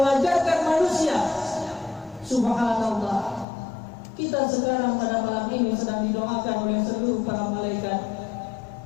manusia. Subhanallah, kita sekarang pada malam ini sedang didoakan oleh seluruh para malaikat,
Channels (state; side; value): drops out; right; at 3.5 s